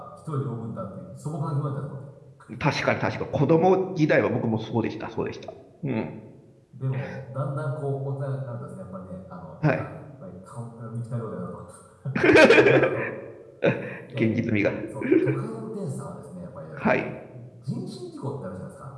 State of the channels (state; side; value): identical; both; correlation 1.00